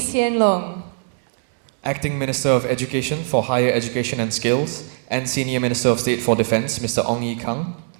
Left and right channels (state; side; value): silent; left; digital silence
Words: Loong. Acting Minister of Education for Higher Education and Skills and Senior Minister of State for Defence, Mr. Ong Yi Kang.